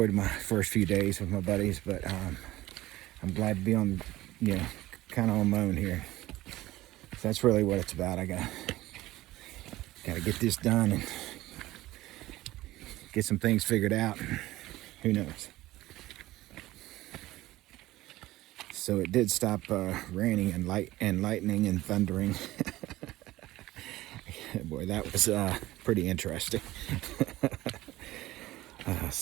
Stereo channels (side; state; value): left; quieter; 16.9 dB